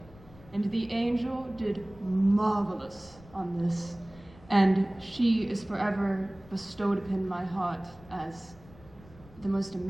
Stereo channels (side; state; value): left; noise; rumble, 22 dB below the sound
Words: And the Angel did marvelous on this. And she is forever bestowed upon my heart as the most